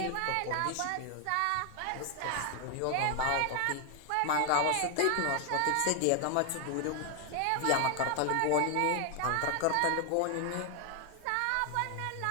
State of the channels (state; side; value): different; both; correlation 0.00